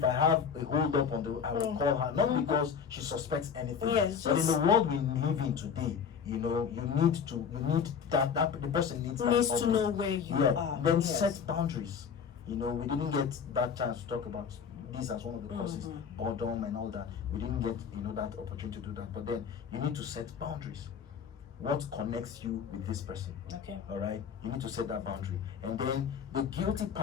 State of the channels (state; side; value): quieter; right; 6.9 dB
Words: I have a hold up I will call her, not because she suspects anything. Yes, but in just- the world we live in today, you need that the person needs that Needs to update. know where you are. Then Yes. set boundaries. We didn't get that chance to talk about this as one of the causes, boredom and all that. We didn't get that opportunity to do that. But then you need to set boundaries. What connects you with this person? Okay. All right, you need to set that boundary, and then the guilty